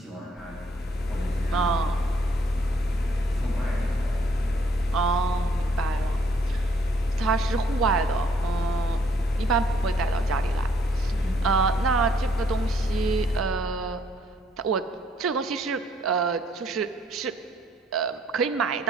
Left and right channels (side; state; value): both; normal; correlation 0.66